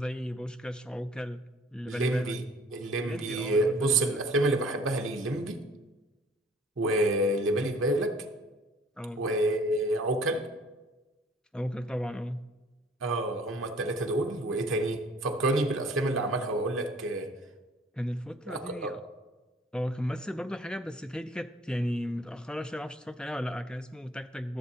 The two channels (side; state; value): both; normal; correlation 0.54